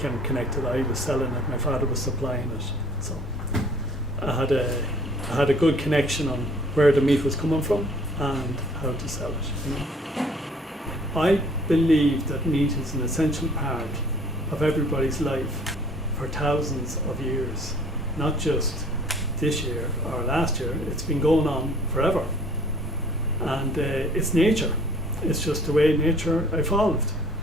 connected. I was selling it, my father was supplying it. So I had a good connection on where the meat was coming from and how to sell it. You know? I believe that meat is an essential part of everybody's life for thousands of years, not just this year or last year. It's been going on forever, and it's nature. It's just the way nature evolved.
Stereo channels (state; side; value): normal; both; correlation 0.54